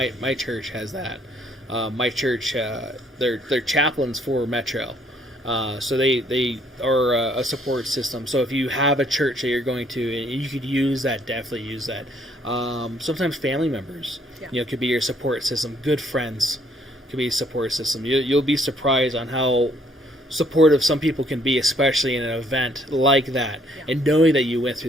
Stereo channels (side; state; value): both; normal; correlation 0.66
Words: church has that. My church, they're chaplains for Metro. So they are a support system. So if you have a church that you're going to, you could use that. Definitely use that. Sometimes family members, could be your support system. Good friends could be a support system. You'll be surprised on how supportive some people can be, especially in an event like that. And knowing that you went